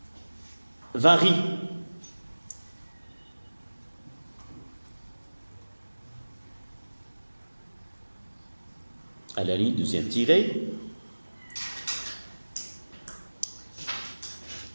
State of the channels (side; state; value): both; inverted; correlation -1.00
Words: varie. À la ligne deuxième tirée,